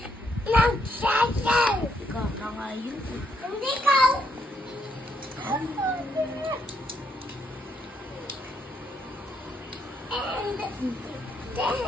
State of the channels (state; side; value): normal; both; correlation 0.75